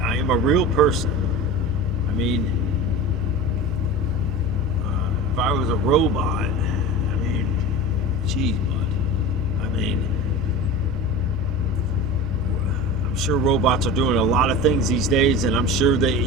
am a real person. If I was a robot, geez, bud. I'm sure robots are doing a lot of things these days, and I'm sure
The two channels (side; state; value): both; normal; correlation 0.31